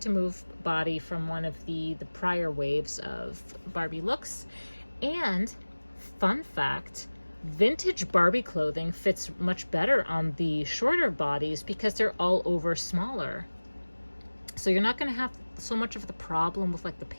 move body from one of the prior waves of Barbie Looks. And fun fact, vintage Barbie clothing fits much better on the shorter bodies because they're all over smaller. So you're not going to have so much of the problem with like the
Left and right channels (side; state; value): both; inverted; correlation -1.00